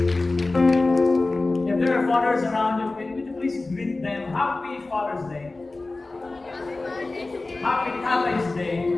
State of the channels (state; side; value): quieter; right; 3.2 dB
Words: If there are fathers around you, would you please greet them? Happy Father's Day. Happy Tatay's Day.